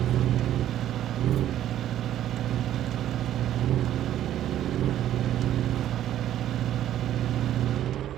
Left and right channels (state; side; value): quieter; left; 11.8 dB